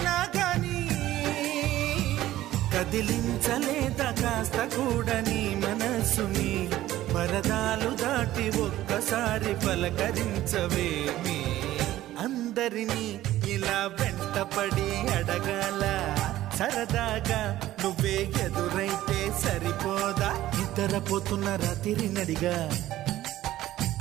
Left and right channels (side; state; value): left; quieter; 14.6 dB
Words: గాని కదిలించలేదా కాస్త కూడా నీ మనసుని పరదాలు దాటి ఒక్కసారి పలకరించవేమి అందరినీ ఇలా వెంటపడి అడగాల సరదాగా నువ్వే ఎదురైతే సరిపోదా నిద్రపోతున్న రాత్రి నడిగా